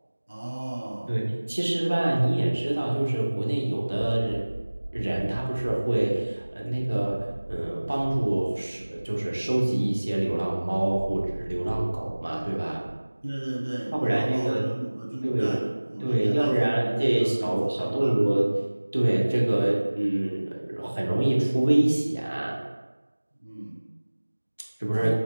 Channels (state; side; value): inverted; both; correlation -1.00